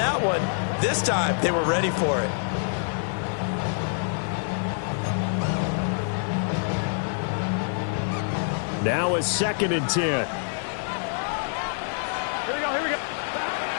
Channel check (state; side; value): silent; right; digital silence